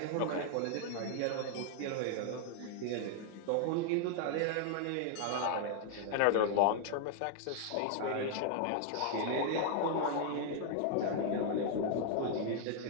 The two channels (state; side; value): different; both; correlation 0.00